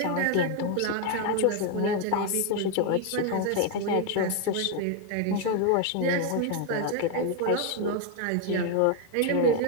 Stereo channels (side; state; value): both; different; correlation 0.01